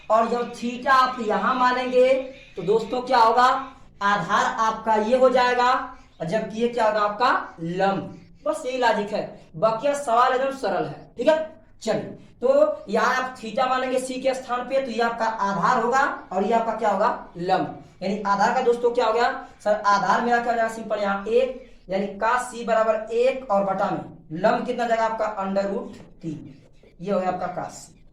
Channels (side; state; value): both; identical; correlation 1.00